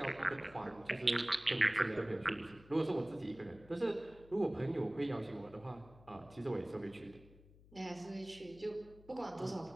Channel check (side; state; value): left; noise; hum, 23 dB below the sound